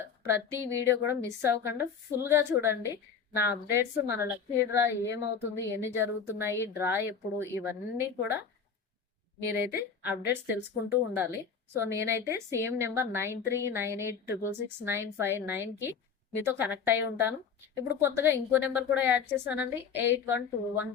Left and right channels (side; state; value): right; quieter; 6.4 dB